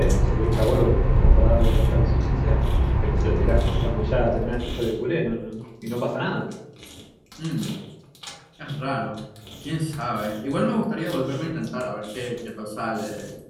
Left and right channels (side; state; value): both; identical; correlation 1.00